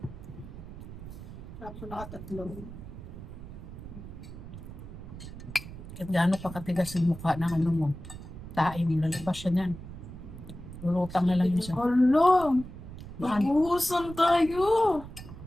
Tapos nakatatlo. Kahit gaano pa katigas yung mukha ng ano mo. Tae mo, lalabas siya niyan. Lulutang na lang yun siya. Hala! Baan? Mag-uusan tayo!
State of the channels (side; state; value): right; noise; rumble, 12 dB below the sound